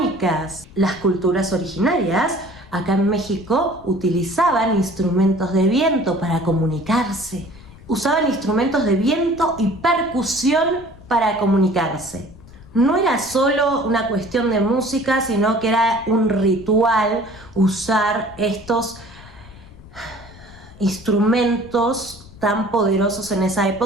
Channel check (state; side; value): noise; left; rumble, 21 dB below the sound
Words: Las culturas originarias acá en México utilizaban instrumentos de viento para comunicarse. Usaban instrumentos de viento y percusión para comunicarse. No era solo una cuestión de música, sino que era un ritual usar estos instrumentos tan poderosos en esa